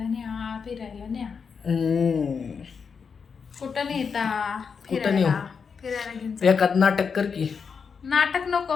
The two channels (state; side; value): quieter; right; 5.9 dB